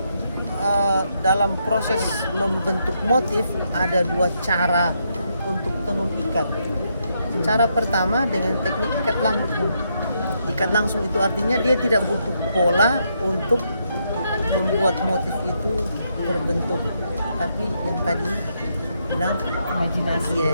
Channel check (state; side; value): inverted; both; correlation -0.78